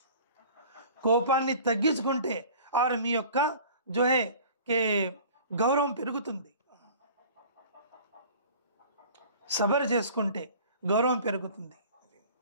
కోపాన్ని తగ్గించుకుంటే ఆరు మీ యొక్క గౌరవం పెరుగుతుంది. సబర్ చేసుకుంటే గౌరవం పెరుగుతుంది.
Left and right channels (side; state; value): both; inverted; correlation -0.45